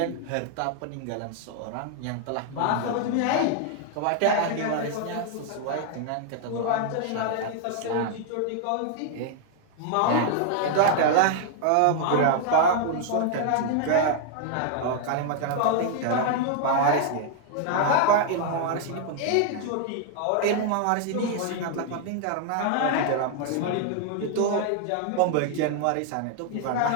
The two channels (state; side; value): different; both; correlation 0.00